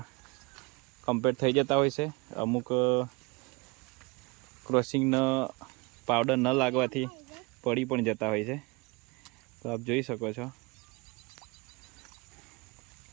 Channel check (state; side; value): quieter; left; 27.2 dB